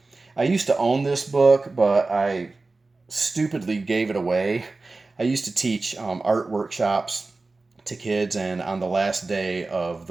I used to own this book, but I stupidly gave it away. I used to teach art workshops to kids, and on the last day of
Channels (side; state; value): left; quieter; 3.5 dB